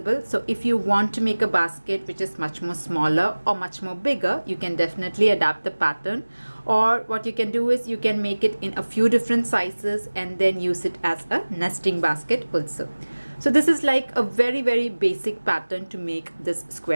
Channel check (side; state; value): both; inverted; correlation -1.00